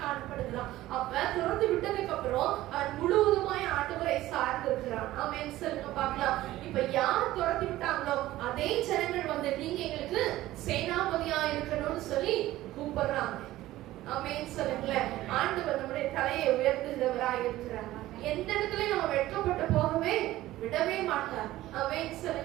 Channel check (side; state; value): left; quieter; 15.8 dB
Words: காணப்படுகிறான். அப்ப துறந்து விட்டதுக்கு அப்புறம் அவன் முழுவதுமாய் ஆண்டவரை சார்ந்து இருக்கிறான். ஆமென் சொல்லுங்க பார்க்கலாம். இப்ப யார் துரத்தி விட்டாங்களோ அதே ஜனங்கள் வந்து நீங்க எங்களுக்கு சேனாபதியா இருக்கணும்னு சொல்லி கூப்பிடுறாங்க. ஆமென் சொல்லுங்களேன். ஆண்டவர் நம்முடைய தலையை உயர்த்துகிறவராய் இருக்கிறார். எந்த இடத்துல நம்ம வெட்கப்பட்டு போகவே விடவே மாட்டார். ஆமென்